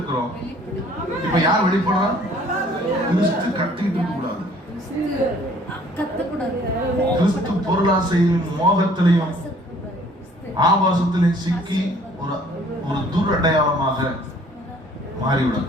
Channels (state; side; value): normal; both; correlation 0.56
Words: இப்ப யார் வெளிப்படுறா? கிறிஸ்து கத்திட்டு இருக்க கூடாது. கிறிஸ்து பொருளாசையும் மோகத்திலையும் ஆபாசத்திலையும் சிக்கி ஒரு துரடையாளமாக